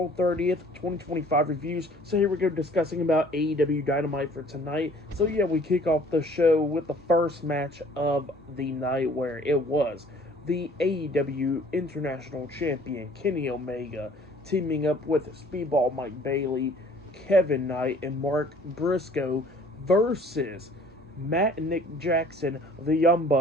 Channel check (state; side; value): normal; both; correlation 0.54